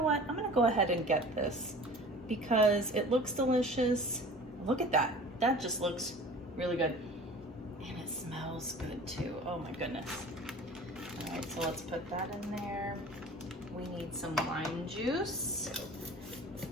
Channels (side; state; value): both; normal; correlation 0.42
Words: what? I'm gonna go ahead and get this because it looks delicious. Look at that. That just looks really good. And it smells good too. Oh my goodness. All right, so let's put that in there. We need some lime juice.